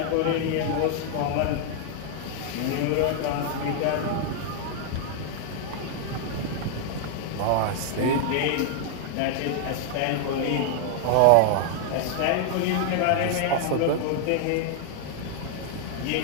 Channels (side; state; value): both; different; correlation 0.00